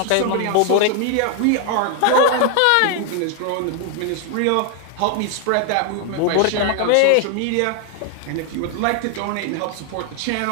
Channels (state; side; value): different; both; correlation 0.00